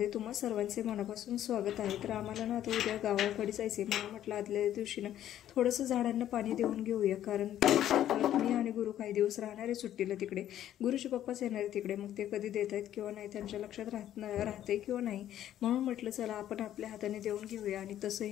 तुम्हा सर्वांचे मनापासून स्वागत आहे. तर आम्हाला ना आता उद्या गावाकडे जायचे, मला म्हटलं आदल्या दिवशी ना थोडंसं झाडांना पाणी देऊन घेऊया, कारण परत मी आणि गुरु काही दिवस राहणार आहे सुट्टीला तिकडे. गुरुचे पप्पाच येणार आहे तिकडे, मग ते कधी देत आहेत किंवा नाही त्यांच्या लक्षात राहते किंवा नाही, म्हणून म्हटलं चला आपण आपल्या हाताने देऊन घेऊया. आणि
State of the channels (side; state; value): right; quieter; 11.7 dB